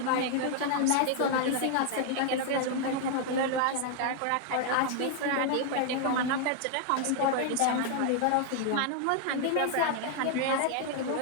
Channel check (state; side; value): different; both; correlation 0.00